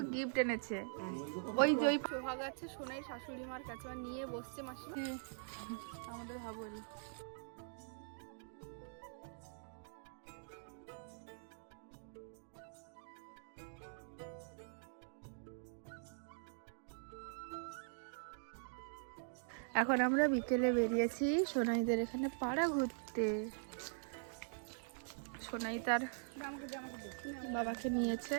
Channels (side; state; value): left; silent; digital silence